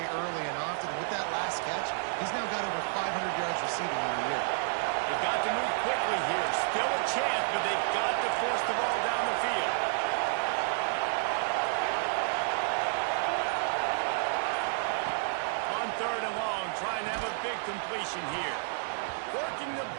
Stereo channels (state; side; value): silent; left; digital silence